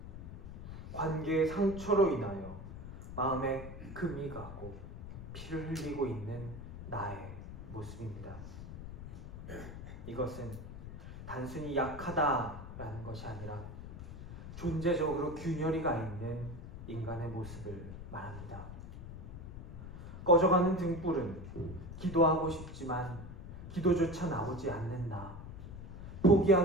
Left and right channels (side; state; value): left; noise; rumble, 10 dB below the sound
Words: 관계의 상처로 인하여 마음에 금이 가고 피를 흘리고 있는 나의 모습입니다. 이것은 단순히 약하다라는 것이 아니라 존재적으로 균열이가 있는 인간의 모습을 말합니다. 꺼져가는 등불은 기도하고 싶지만 기도조차 나오지 않는 나,